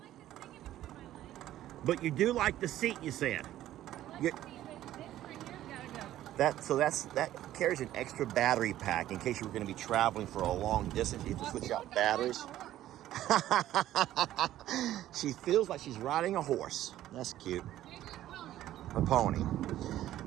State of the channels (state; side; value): quieter; left; 13.3 dB